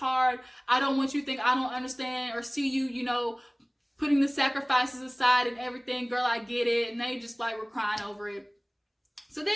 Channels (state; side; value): identical; both; correlation 1.00